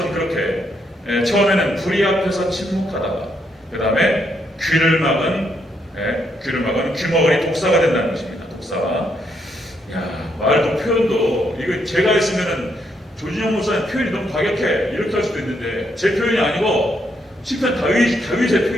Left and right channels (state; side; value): normal; both; correlation 0.76